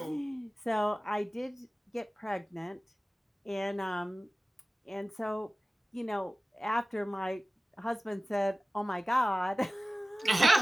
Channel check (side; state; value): both; normal; correlation 0.96